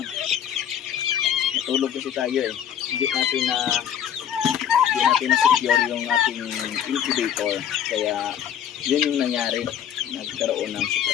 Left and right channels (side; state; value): right; quieter; 9.5 dB